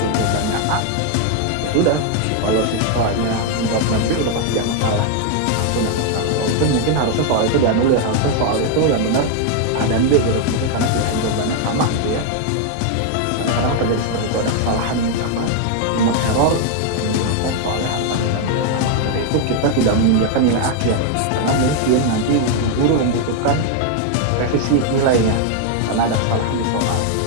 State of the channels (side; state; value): both; different; correlation 0.00